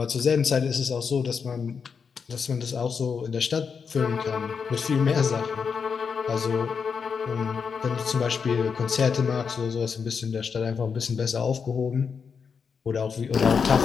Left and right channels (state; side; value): quieter; right; 6.0 dB